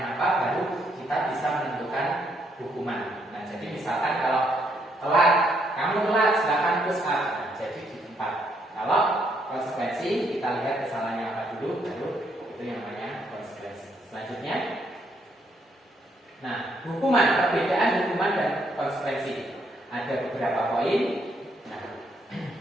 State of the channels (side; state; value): both; normal; correlation 0.73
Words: apa, baru kita bisa menentukan hukuman. Nah, jadi misalkan kalau telat, kamu telat silakan push up. Nah, jadi di tempat. Kalau konsekuensi kita lihat kesalahannya apa dulu, baru itu yang namanya konsekuensi. Selanjutnya, nah, hukuman, perbedaan hukuman dan konsekuensi. Ada beberapa poin. Nah,